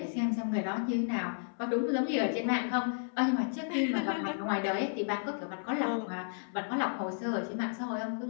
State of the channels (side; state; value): right; silent; 56 dB below the other